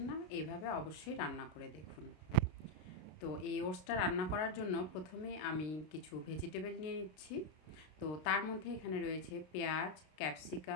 না, এইভাবে অবশ্যই রান্না করে দেখুন। তো এই ওটসটা রান্না করার জন্য প্রথমে আমি কিছু ভেজিটেবল নিয়ে নিচ্ছি। তো তার মধ্যে এখানে রয়েছে পেঁয়াজ,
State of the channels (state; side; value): late; right; 32 ms